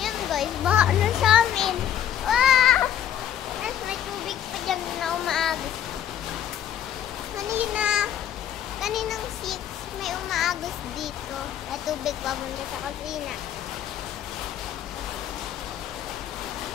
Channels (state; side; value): quieter; right; 10.4 dB